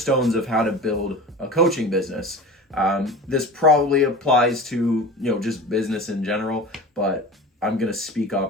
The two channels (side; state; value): both; normal; correlation 0.34